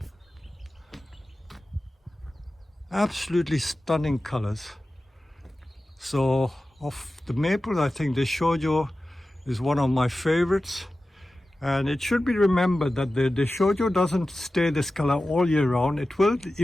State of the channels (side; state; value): both; normal; correlation 0.95